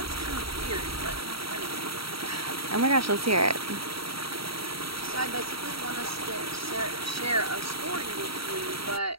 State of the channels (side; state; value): left; late; 0.75 ms